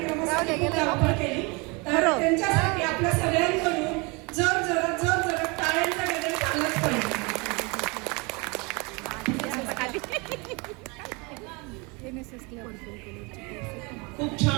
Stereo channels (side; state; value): left; quieter; 28.6 dB